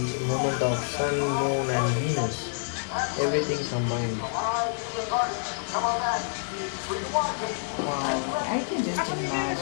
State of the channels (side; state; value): right; silent; digital silence